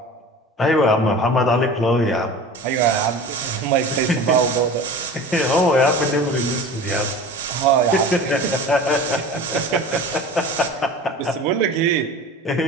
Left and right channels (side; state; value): both; normal; correlation 0.37